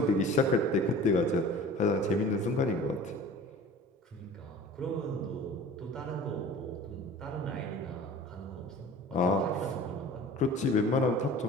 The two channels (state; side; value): normal; both; correlation 0.42